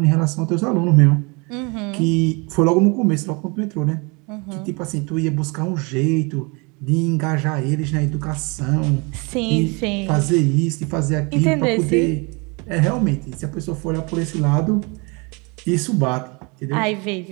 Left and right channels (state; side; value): quieter; left; 29.7 dB